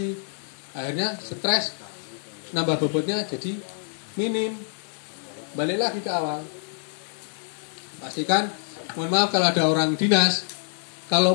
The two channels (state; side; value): silent; right; 61 dB below the other